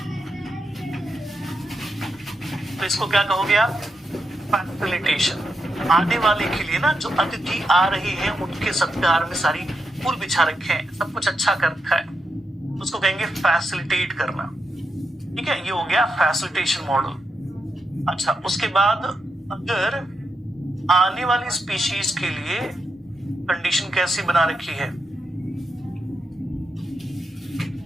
तो इसको क्या कहोगे आप, फैसिलिटेशन। आने वाले के लिए ना, जो अतिथि आ रहे हैं उनके सत्कार में सारी फूल बिछा रखे हैं, सब कुछ अच्छा कर रखा है, उसको कहेंगे फैसिलिटेट करना। ठीक है, ये हो गया फैसिलिटेशन मॉडल। अच्छा, उसके बाद अगर आने वाली स्पीशीज के लिए कंडीशन कैसी बना रखी है,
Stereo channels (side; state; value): both; normal; correlation 0.85